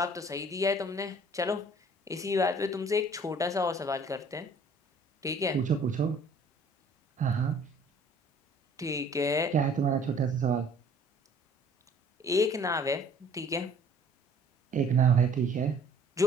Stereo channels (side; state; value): both; normal; correlation 0.54